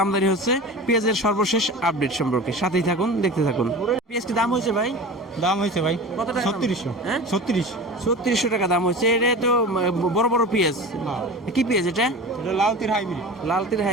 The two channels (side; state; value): both; normal; correlation 0.34